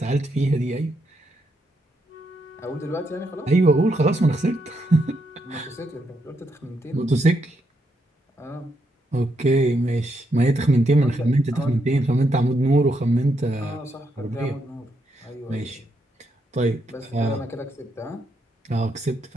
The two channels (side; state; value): both; normal; correlation 0.79